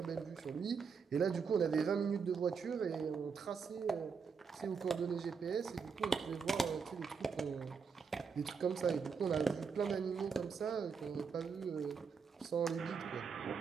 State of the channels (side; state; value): left; quieter; 5.8 dB